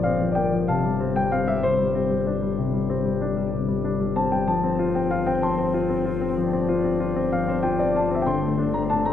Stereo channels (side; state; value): left; noise; hum, 3 dB below the sound